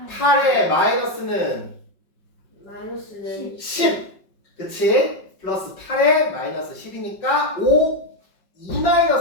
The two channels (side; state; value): right; late; 5.5 ms